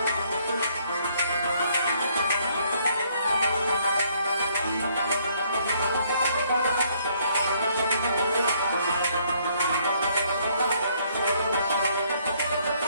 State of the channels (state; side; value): inverted; both; correlation -0.67